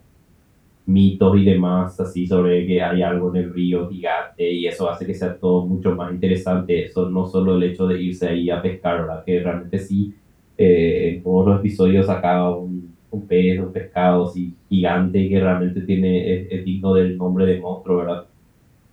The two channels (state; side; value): identical; both; correlation 1.00